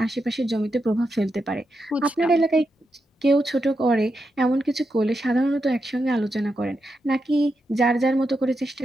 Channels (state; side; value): normal; both; correlation 0.86